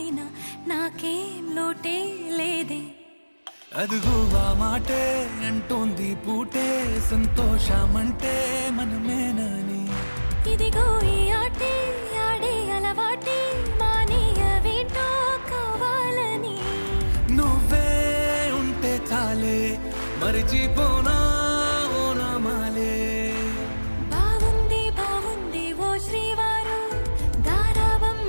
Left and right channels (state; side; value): inverted; both; correlation -1.00